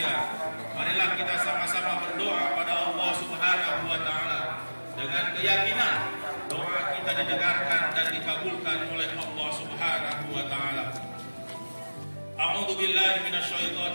marilah kita sama-sama berdoa pada Allah Subhanahu wa ta'ala dengan keyakinan doa kita didengarkan dan dikabulkan oleh Allah Subhanahu wa ta'ala. A'udzu billahi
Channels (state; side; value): inverted; both; correlation -1.00